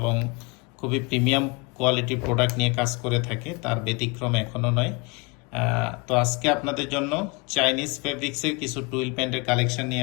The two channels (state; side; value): quieter; right; 29.0 dB